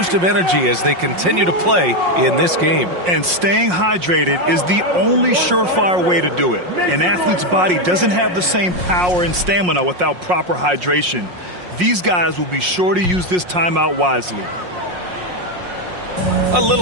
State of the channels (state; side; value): late; left; 5.6 ms